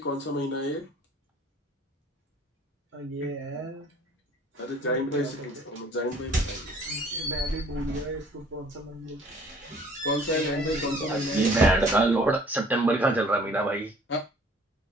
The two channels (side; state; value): both; normal; correlation 0.54